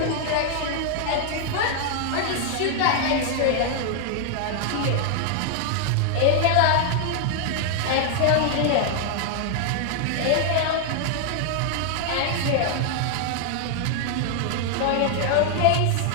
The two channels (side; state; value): both; different; correlation 0.00